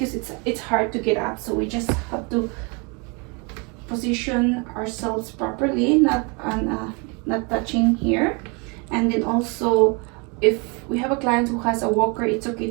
it's hard to get up. So we just have to position ourselves properly, not touching here. And then also, if we have a client who has a walker, it's okay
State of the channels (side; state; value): left; quieter; 31.9 dB